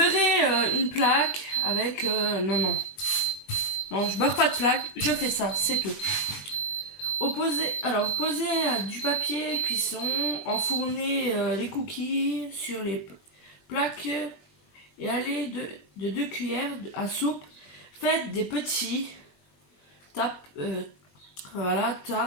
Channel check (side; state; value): right; late; 21 ms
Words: une plaque avec... non, je beurre pas de plaque. Je fais ça, c'est tout. Poser du papier cuisson, enfourner les cookies sur les plaques et aller de 2 cuillères à soupe. Faites des petits voilà,